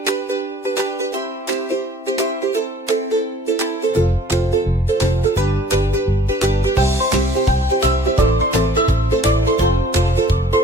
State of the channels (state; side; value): normal; both; correlation 0.52